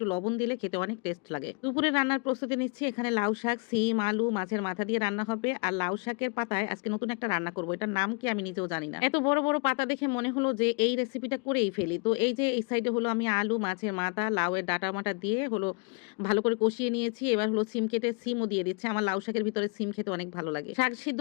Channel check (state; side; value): quieter; right; 34.3 dB